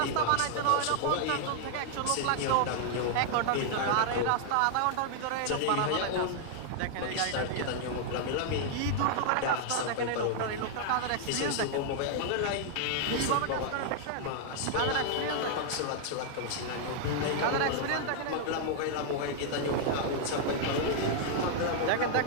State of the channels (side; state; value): both; different; correlation -0.01